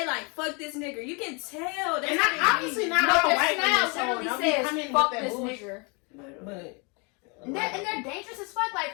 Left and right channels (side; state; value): right; quieter; 31.1 dB